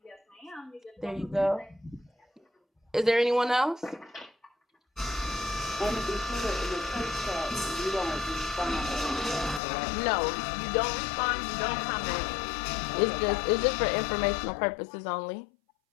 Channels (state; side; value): drops out; right; at 9.6 s